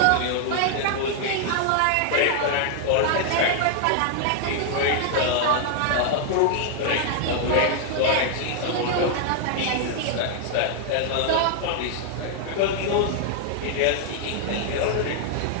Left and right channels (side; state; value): both; different; correlation 0.00